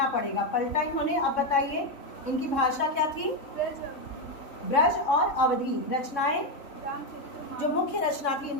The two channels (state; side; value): late; right; 3.6 ms